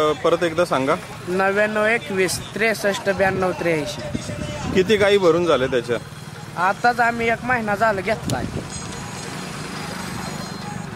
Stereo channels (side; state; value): both; identical; correlation 1.00